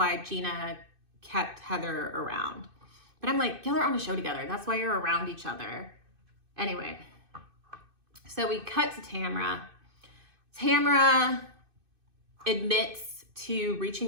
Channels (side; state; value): left; late; 2.6 ms